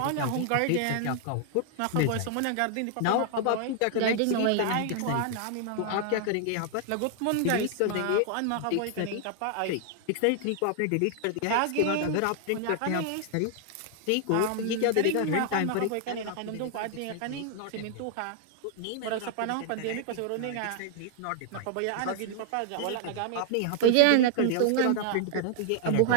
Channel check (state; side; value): different; both; correlation 0.00